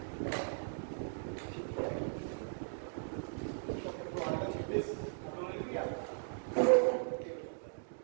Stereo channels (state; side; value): silent; left; digital silence